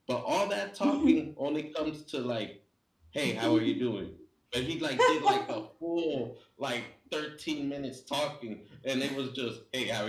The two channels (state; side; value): identical; both; correlation 1.00